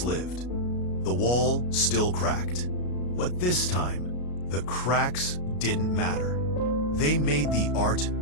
lived. The wall still cracked. But this time, the cracks didn't matter. They made the art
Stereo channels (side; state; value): right; late; 33 ms